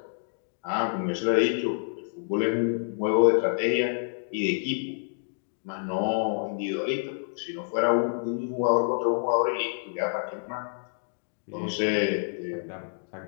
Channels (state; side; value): silent; right; digital silence